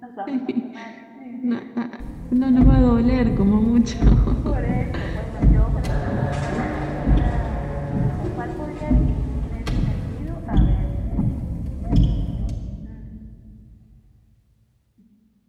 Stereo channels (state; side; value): identical; both; correlation 1.00